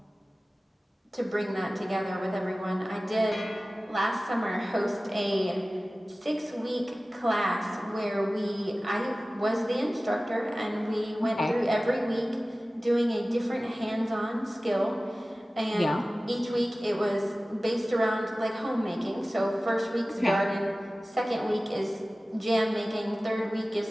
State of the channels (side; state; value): both; normal; correlation 0.97